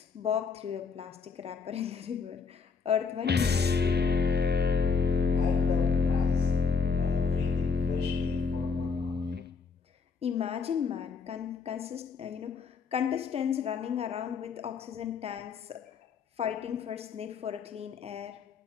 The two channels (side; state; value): right; quieter; 5.3 dB